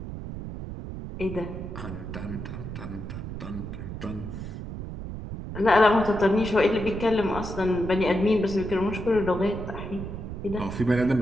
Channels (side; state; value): right; noise; rumble, 8 dB below the sound